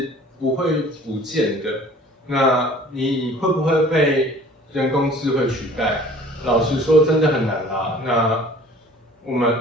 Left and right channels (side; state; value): both; normal; correlation 0.49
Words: 不会不见的。那你会不会被人工智慧取代？老实说，真的很难啊。那